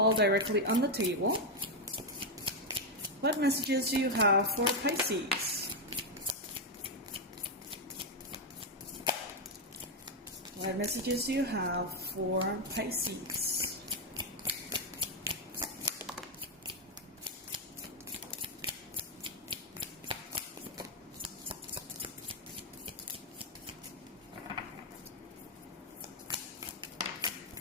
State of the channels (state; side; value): normal; both; correlation 0.03